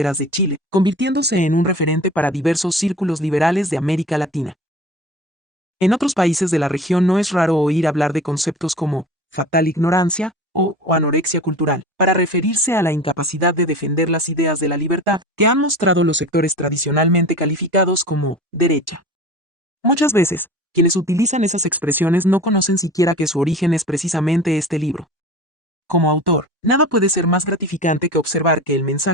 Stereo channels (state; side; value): normal; both; correlation 0.37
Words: de Chile, convirtiéndose en un referente para diversos círculos liberales de América Latina. En otros países de la región no es raro oír hablar de conceptos como fatal ignorancia o anorexia cultural, para referirse a la incapacidad de defender las ideas de la libertad que han mostrado los sectores tradicionalmente calificados como derecha. Muchas veces, quienes utilizan esas expresiones no conocen siquiera que su origen es precisamente este libro. Como autor, nada puede ser más gratificante que observar que el